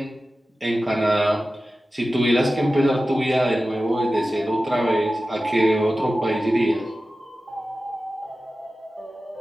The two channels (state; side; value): normal; both; correlation 0.95